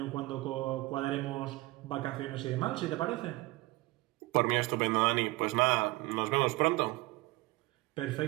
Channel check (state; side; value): quieter; left; 20.8 dB